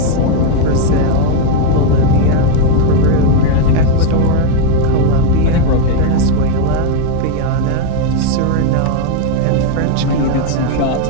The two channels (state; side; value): different; both; correlation 0.01